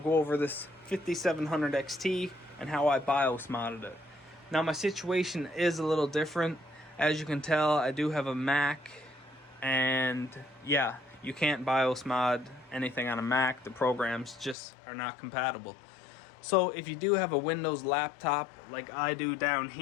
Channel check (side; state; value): right; drops out; at 14.6 s